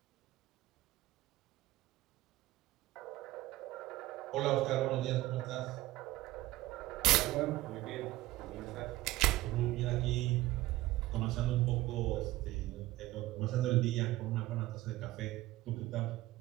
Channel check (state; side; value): quieter; left; 17.3 dB